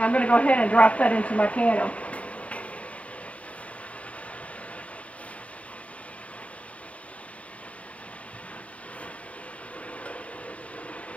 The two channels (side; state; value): right; late; 0.066 ms